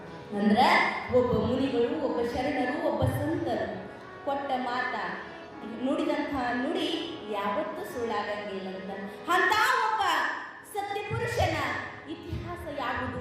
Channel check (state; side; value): identical; both; correlation 1.00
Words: ಅಂದ್ರೆ ಒಬ್ಬ ಮುನಿಗಳು, ಒಬ್ಬ ಶರಣರು, ಒಬ್ಬ ಸಂತರು ಕೊಟ್ಟ ಮಾತ, ನುಡಿದಂತಹ ನುಡಿ ಯಾವತ್ತೂ ಸುಳ್ಳಾಗಂಗಿಲ್ಲ ಅಂತ ಒಬ್ಬ ಸತ್ಯ ಪುರುಷನ ಇತಿಹಾಸ ಯಾವುದು